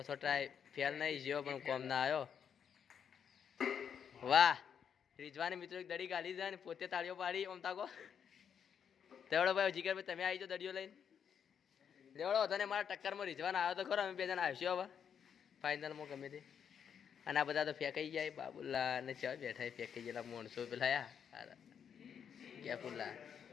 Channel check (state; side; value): quieter; right; 7.7 dB